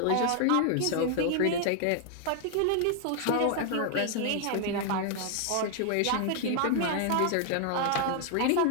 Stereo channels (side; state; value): both; different; correlation 0.00